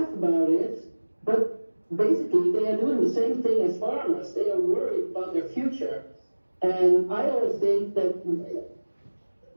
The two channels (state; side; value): inverted; both; correlation -1.00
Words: about it, but basically they are doing the same thing as farmers. They are worried about their future. And I always think that